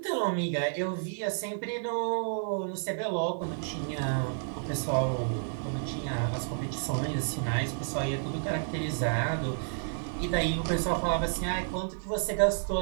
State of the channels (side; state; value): left; silent; digital silence